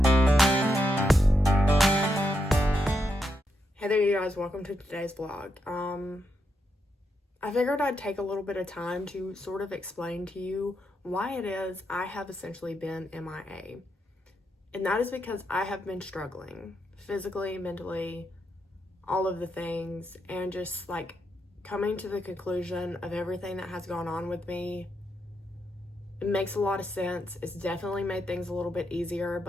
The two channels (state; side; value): normal; both; correlation 0.82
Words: there, you guys, welcome to today's vlog. I figured I'd take a little bit of time to sort of explain to you why it is I have essentially been MIA. And that is because I have been struggling physically, mentally, all of the things, and just like coming to the conclusion of everything that has gone on with me. It makes a lot of sense. It's definitely made things a little bit easier,